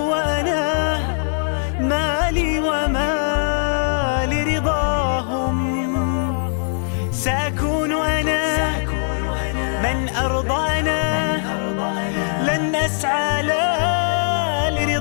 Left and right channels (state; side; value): silent; right; digital silence